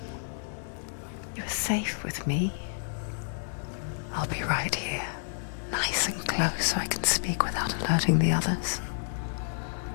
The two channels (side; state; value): right; silent; digital silence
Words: You're safe with me. I'll be right here, nice and close so I can speak without alerting the others.